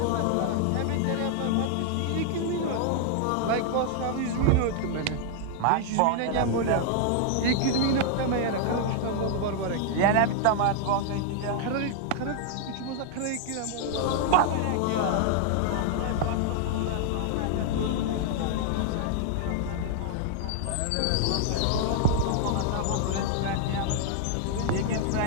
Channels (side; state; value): both; different; correlation 0.00